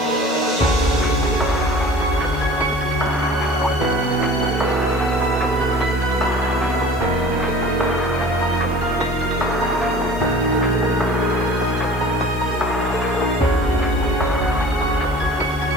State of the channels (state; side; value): noise; right; hiss, 24 dB below the sound